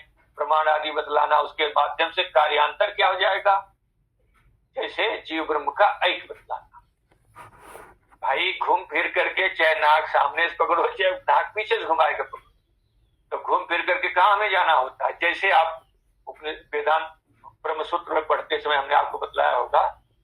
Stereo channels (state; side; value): identical; both; correlation 1.00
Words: प्रमाण आदि बतलाना, उसके माध्यम से कार्यांतर क्या हो जाएगा, जैसे जीव ब्रह्म का ऐक्य बतलाना। भाई घूम फिर करके चाहे नाक सामने से पकड़ो चाहे नाक पीछे से घुमाएगा पकड़ो, तो घूम फिर करके कहाँ हमें जाना होता है। जैसे आप वेदांत ब्रह्म सूत्र में पढ़ते समय हमने आपको बतलाया होगा,